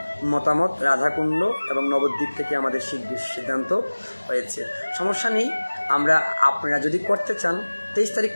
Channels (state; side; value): inverted; both; correlation -1.00